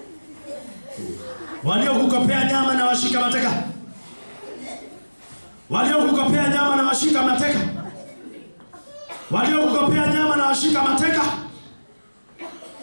Waliokukopea nyama na washika mateka. Waliokukopea nyama na washika mateka. Waliokukopea nyama na washika mateka.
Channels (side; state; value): both; inverted; correlation -1.00